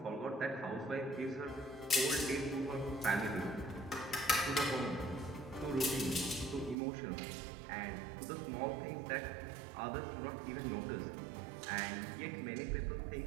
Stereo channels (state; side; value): drops out; left; at 6.8 s